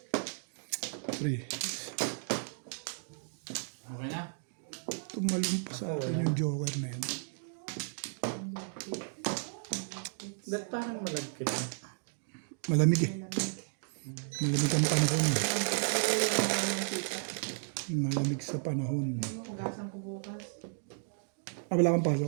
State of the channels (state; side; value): silent; left; digital silence